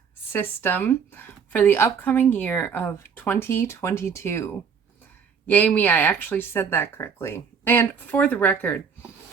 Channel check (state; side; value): quieter; left; 6.4 dB